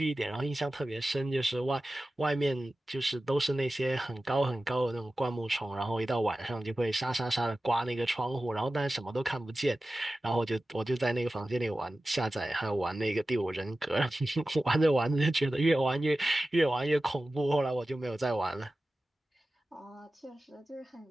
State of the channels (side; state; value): both; normal; correlation 0.95